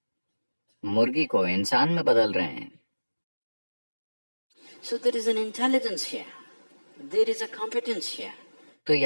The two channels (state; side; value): inverted; both; correlation -1.00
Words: मुर्गी को इंसान में बदल रहे हैं। So there is an intelligence here. There is a competence here. तो